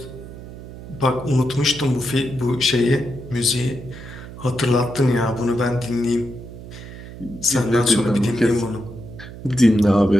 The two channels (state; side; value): noise; right; hum, 14 dB below the sound